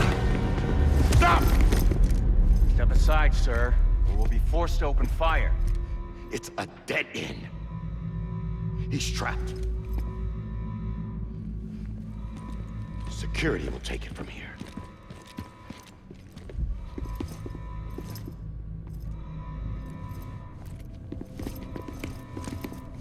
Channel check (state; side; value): identical; both; correlation 1.00